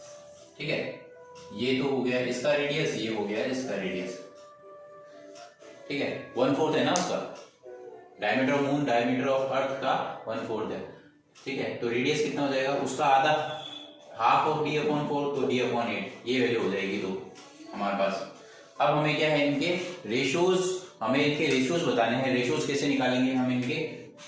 ठीक है, ये तो हो गया इसका रेडियस, ये हो गया इसका रेडियस। ठीक है, 1/4 है ना उसका, diameter of moon diameter of earth का 1/4 है। ठीक है, तो रेडियस कितना हो जाएगा उसका आधा, हाफ ऑफ d/4 तो d/8, ये वैल्यू हो जाएगी तो हमारे पास। अब हमें क्या है, इनके रेशियोज, हमें इनके रेशियोज बताने हैं। रेशियोज कैसे निकालेंगे हम इनके,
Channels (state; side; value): identical; both; correlation 1.00